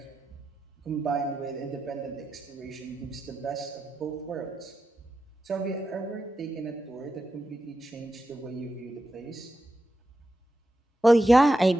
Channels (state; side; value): normal; both; correlation 0.89